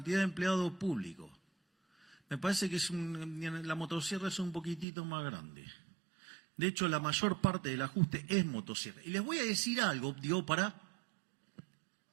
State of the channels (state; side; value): drops out; left; at 4.9 s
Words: de empleados públicos. Me parece que la motosierra es un poquitito más grande. De hecho, la mayor parte del ajuste es motosierra. Y les voy a decir algo,